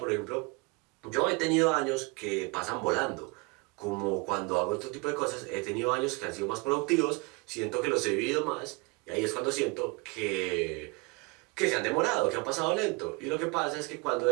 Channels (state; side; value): quieter; left; 28.2 dB